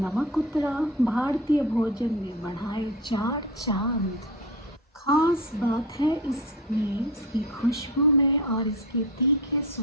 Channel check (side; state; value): both; normal; correlation 0.27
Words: उतरा, भारतीय भोजन में बढ़ाए चार चांद. खास बात है इसमें, इसकी खुशबू में और इसके तीखे